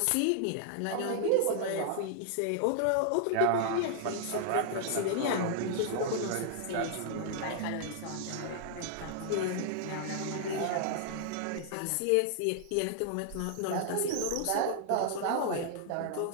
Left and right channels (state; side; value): different; both; correlation -0.01